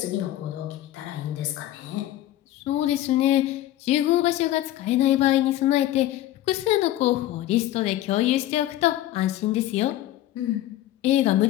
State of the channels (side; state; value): right; quieter; 14.1 dB